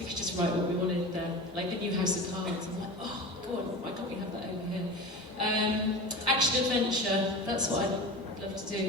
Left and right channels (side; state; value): both; normal; correlation 0.32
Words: could just write what we wanted there. Like the new House of Cards. I'm like, oh, go on, why can't we have that over here? Action adventure, that's what I'd love to